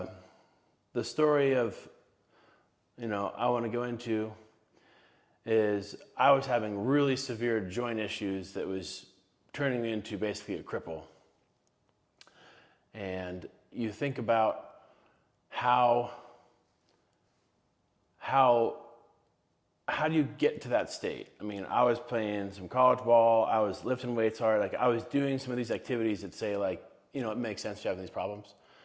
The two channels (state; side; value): identical; both; correlation 1.00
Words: The story of, I want to go into is I was having really severe joint issues that was turning me into basically a cripple. And you think about how do you get to that state? I mean, I was playing some college ball, I was lifting weights hard, like I was doing some of these activities that say like, it makes sense to have these problems.